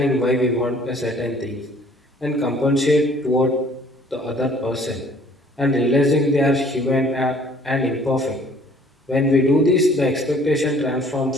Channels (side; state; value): both; normal; correlation 0.56